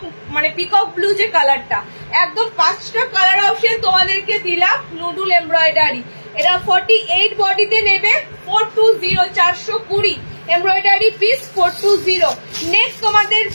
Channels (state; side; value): inverted; both; correlation -1.00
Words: মানে পিকক ব্লু যে কালারটা, একদম 5টা কালার অপশন তোমাদেরকে দিলাম নুডুল এমব্রয়ডারি। এটা 48 বডিতে নেবে 420, 420 এমব্রয়ডারি পিস 420। নেক্সট তোমাদের